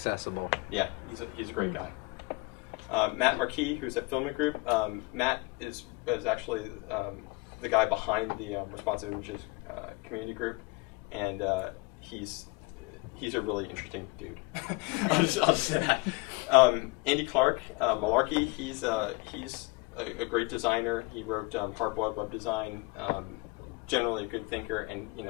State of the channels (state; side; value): quieter; right; 26.0 dB